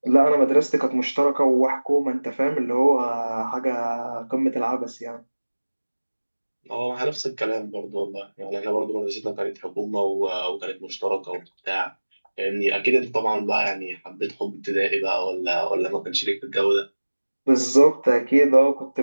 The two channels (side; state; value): both; inverted; correlation -1.00